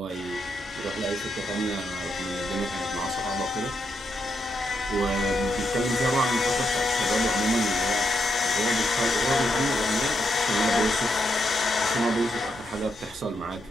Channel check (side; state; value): right; noise; hum, 25 dB below the sound